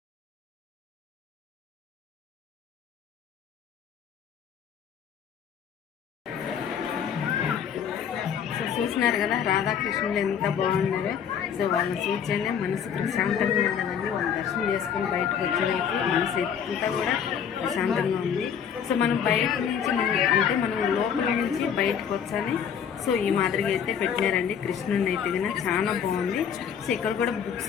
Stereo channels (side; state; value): right; quieter; 7.9 dB